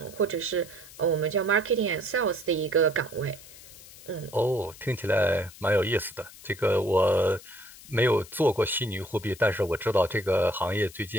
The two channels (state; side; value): noise; left; hiss, 19 dB below the sound